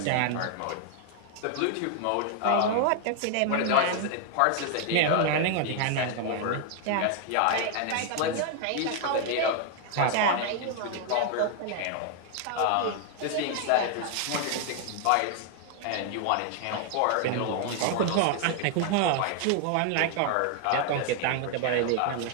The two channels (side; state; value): both; different; correlation 0.00